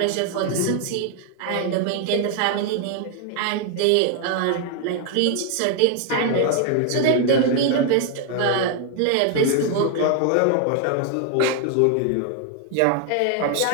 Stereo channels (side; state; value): both; different; correlation 0.00